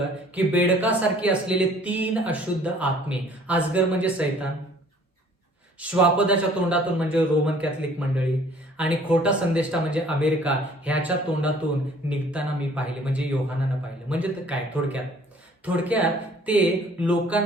की बेडकासारखी असलेले 3 अशुद्ध आत्मे, अजगर म्हणजे सैतान, श्वापदाच्या तोंडातून म्हणजे रोमन कॅथलिक मंडळी, आणि खोटा संदेष्टा म्हणजे अमेरिका, ह्याच्या तोंडातून निघताना मी पाहिले. म्हणजे योहानानं पाहिलं. म्हणजे काय? थोडक्यात ते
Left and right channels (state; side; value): normal; both; correlation 0.55